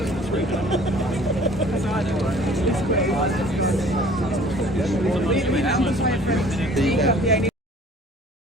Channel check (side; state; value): both; normal; correlation 0.51